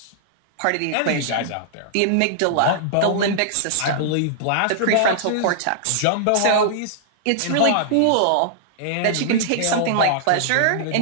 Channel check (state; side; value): different; both; correlation -0.01